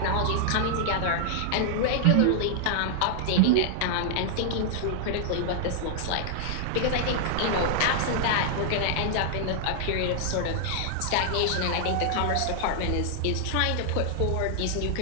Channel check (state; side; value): different; both; correlation -0.01